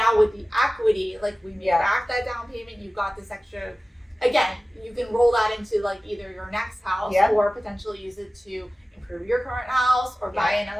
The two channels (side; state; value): both; normal; correlation 0.97